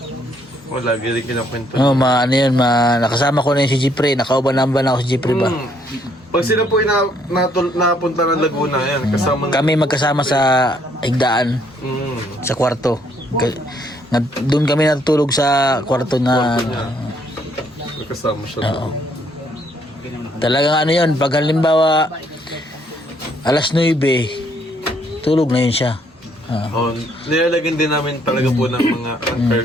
Wala, galing kinakwento. Oh, ano yun, nakasama ko na yun si Jipre. Nakauban-amban ako si Jipre ba? Pag sila po napunta ng Laguna, yan, kasama Kami magkasama sa higdaan, sa kwarto. Doon kami natutulog sa kwarto na... kasama siya. Talagang ano yun, pag halimbawa alas 9, tulog na yun siya. Nilalagyan din namin talaga po ng mga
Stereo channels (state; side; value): normal; both; correlation 0.68